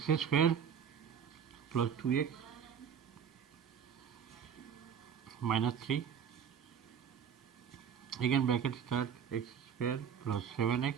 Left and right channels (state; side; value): quieter; left; 7.8 dB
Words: square plus 2x minus 3, again bracket start, x square plus 7x